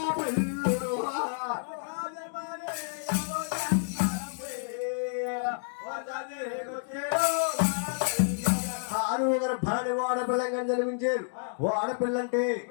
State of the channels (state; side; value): silent; right; digital silence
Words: పిల్లుడు 6వ గర్భాన్ని వాడపిల్లంగా జన్మించారు. వాడపిల్ల అంటే